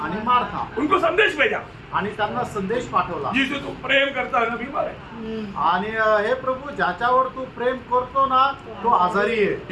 आणि मार्था. उनको संदेश भेजा. आणि त्यांना संदेश पाठवला जिसे तू प्रेम करता है ना बीमार है। आणि हे प्रभू ज्याच्यावर तू प्रेम करतो ना तो आजारी आहे.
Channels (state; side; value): identical; both; correlation 1.00